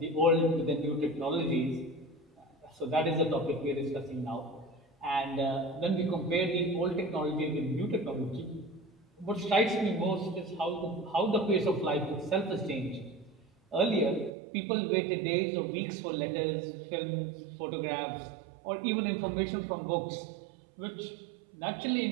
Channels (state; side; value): drops out; left; at 14.3 s